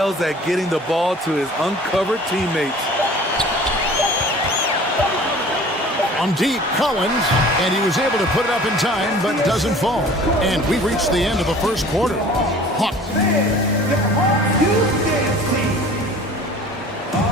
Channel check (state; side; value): normal; both; correlation 0.46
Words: at getting the ball to his uncovered teammates. On deep, Collins, and he was able to put it up in time, but doesn't fall. And we've reached the end of the first quarter. Hawks.